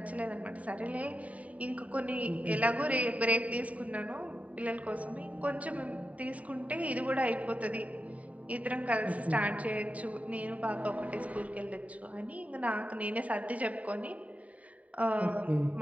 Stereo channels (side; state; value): left; late; 0.069 ms